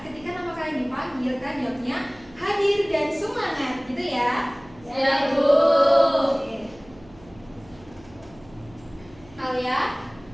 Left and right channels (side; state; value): right; noise; hum, 24 dB below the sound